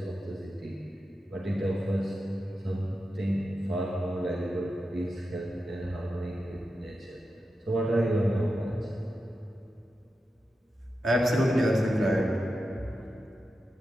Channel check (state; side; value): normal; both; correlation 0.90